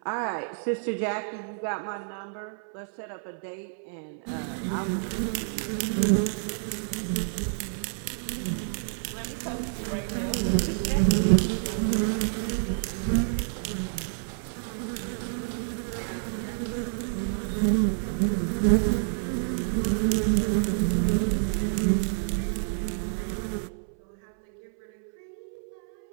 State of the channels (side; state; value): left; silent; 59 dB below the other